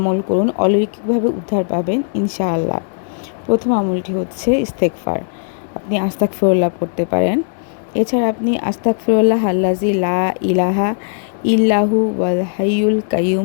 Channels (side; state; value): right; silent; digital silence